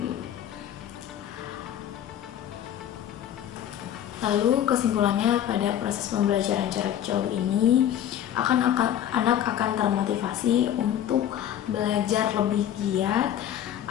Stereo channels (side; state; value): right; quieter; 10.7 dB